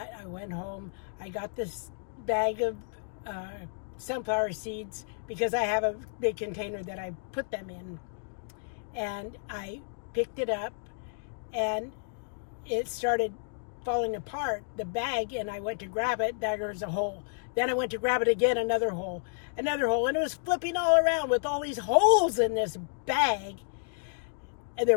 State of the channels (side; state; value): right; silent; digital silence